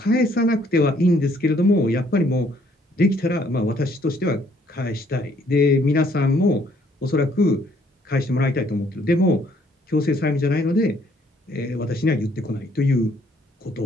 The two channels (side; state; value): both; normal; correlation 0.65